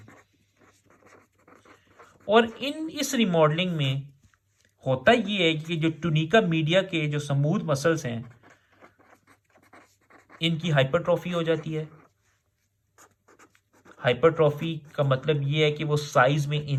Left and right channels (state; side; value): identical; both; correlation 1.00